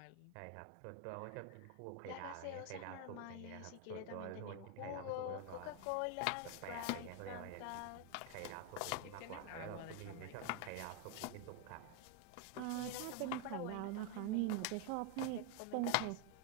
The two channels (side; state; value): both; different; correlation 0.01